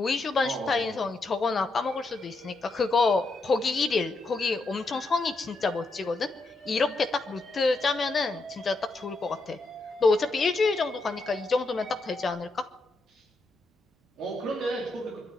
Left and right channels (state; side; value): quieter; right; 3.2 dB